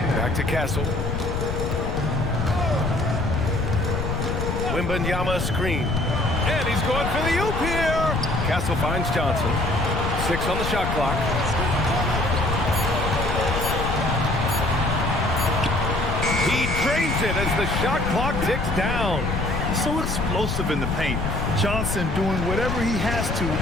Back to Castle. Wembanyama screen. And he's going for the oop here. Castle finds Johnson. 6 on the shot clock. He drains it as the shot clock ticks down. So explosive in the paint. Johnson doing whatever he has to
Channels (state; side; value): noise; left; rumble, 2 dB below the sound